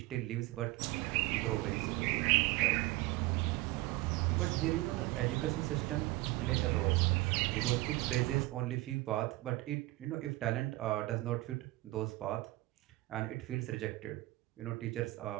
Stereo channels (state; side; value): quieter; left; 19.6 dB